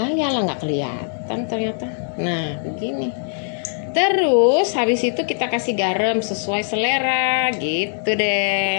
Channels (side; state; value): right; silent; digital silence